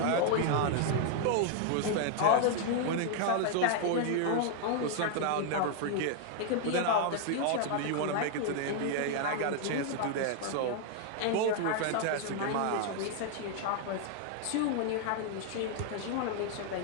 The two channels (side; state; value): both; different; correlation 0.00